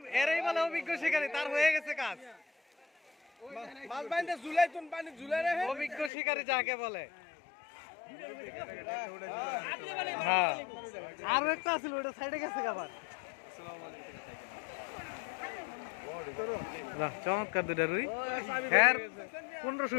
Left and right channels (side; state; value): right; drops out; at 6.1 s